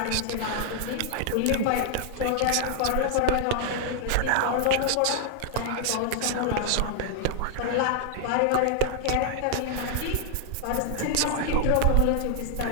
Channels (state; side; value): different; both; correlation 0.00